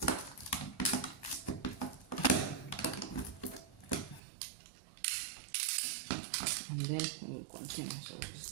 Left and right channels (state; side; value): drops out; left; at 4.2 s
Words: And then we'll continue. So